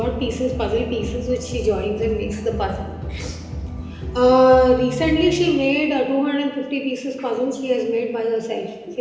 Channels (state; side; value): identical; both; correlation 1.00